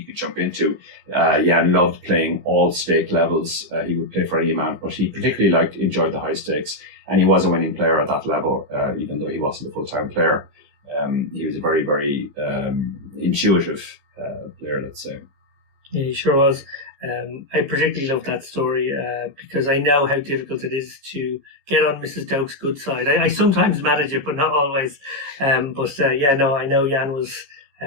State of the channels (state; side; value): late; left; 15 ms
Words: jump into. Jan loved playing all stake levels. He would play for any amount, but he particularly enjoyed the high stakes, and he was a winning player at that level, even though he wasn't a full-time player. He was a very, very intuitive player, let's say. Yeah, he sure was. I particularly love that story because I know how difficult it is to get on Mrs. Doke's good side. I sometimes manage it, but not always. I know Jan was